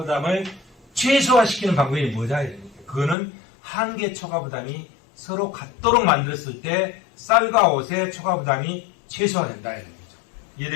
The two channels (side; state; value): right; drops out; at 3.2 s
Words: 최소화시키는 방법이 뭐냐? 그거는 한계 초과 부담이 서로 같도록 만들었을 때 쌀과 옷의 초과 부담이 최소화된다. 이런 거죠.